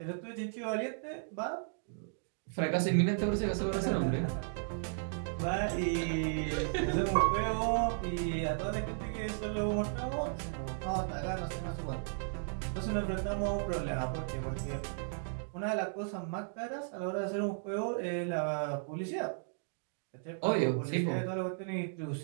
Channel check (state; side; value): silent; left; digital silence